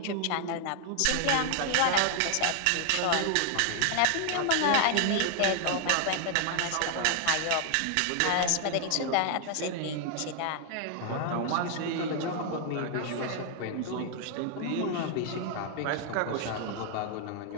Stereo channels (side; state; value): both; different; correlation 0.00